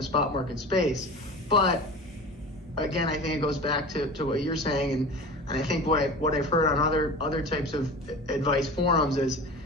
spot market space. But again, I think it goes back to what you're saying, and I think what I've heard on other types of advice forums is,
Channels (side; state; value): both; normal; correlation 0.34